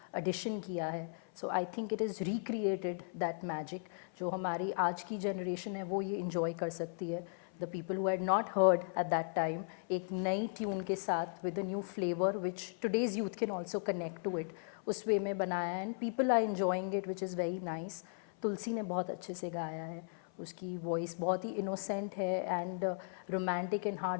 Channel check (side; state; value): right; silent; 53 dB below the other